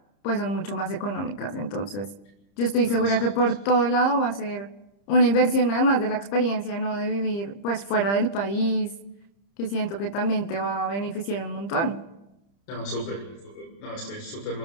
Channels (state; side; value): late; right; 30 ms